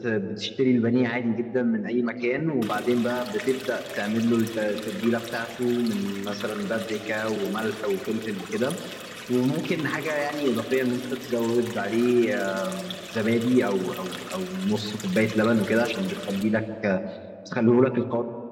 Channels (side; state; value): both; identical; correlation 1.00